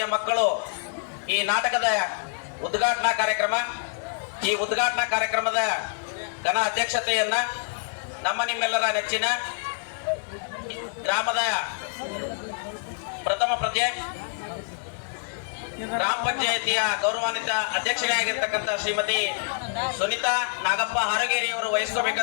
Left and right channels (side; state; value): right; silent; digital silence